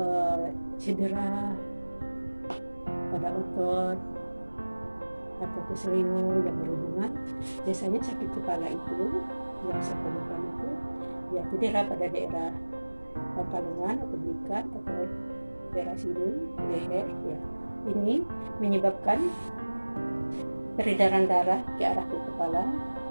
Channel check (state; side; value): inverted; both; correlation -1.00